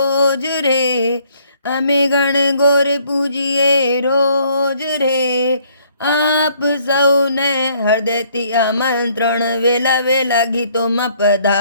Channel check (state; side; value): inverted; both; correlation -0.64